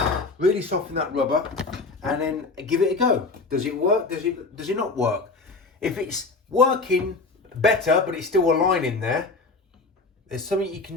really soften that rubber, and then give it a go. Does it work? Does it not work? If it's working better, but it's still a line in there, there's something you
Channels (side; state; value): right; quieter; 3.7 dB